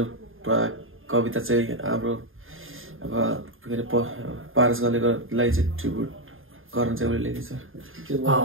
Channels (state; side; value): late; left; 0.59 ms